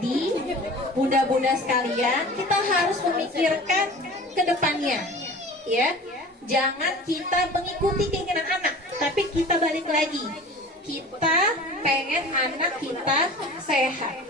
bunda-bunda sekalian, kita harus memikirkan ke depannya, ya. Jangan kita mengikuti keinginan anak, tapi kita balik lagi. Kita pengen anak kita sehat.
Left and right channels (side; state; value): both; normal; correlation 0.40